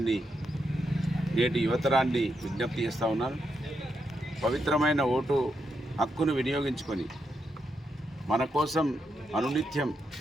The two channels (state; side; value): normal; both; correlation 0.83